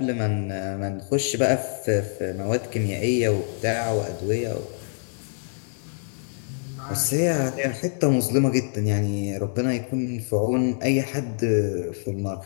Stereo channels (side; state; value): right; silent; digital silence